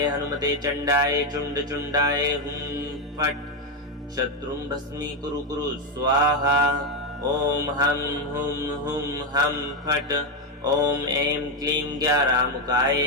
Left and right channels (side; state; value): both; normal; correlation 0.07